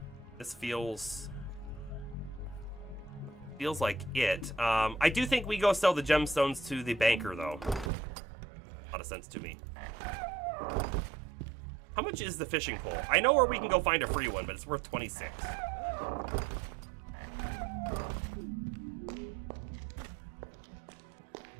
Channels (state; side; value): drops out; left; at 7.9 s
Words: This feels like it. I do think we go sell the gemstones to the banker, though. A lot of sense to me. How much is the fishing pole? I know where we can go find a free one, but it's worth 26.